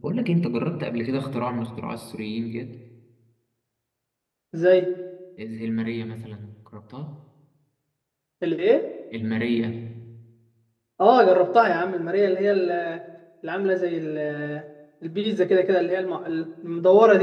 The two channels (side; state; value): both; identical; correlation 1.00